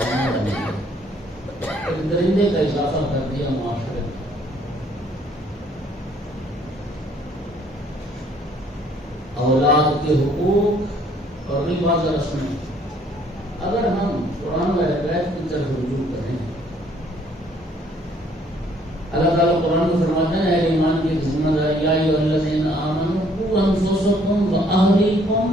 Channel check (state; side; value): normal; both; correlation 0.62